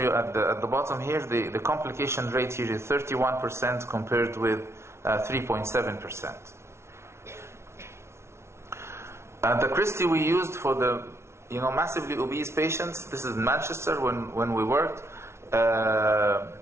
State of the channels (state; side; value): late; left; 0.13 ms